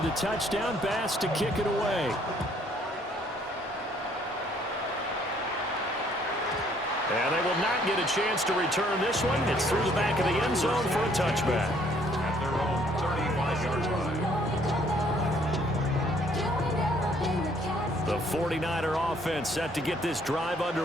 the touchdown, Bass to kick it away. And they will not get a chance to return this one. It's through the back of the end zone for a touchback. At their own 35-yard line. The 49er offense set to get this drive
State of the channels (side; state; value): both; normal; correlation 0.63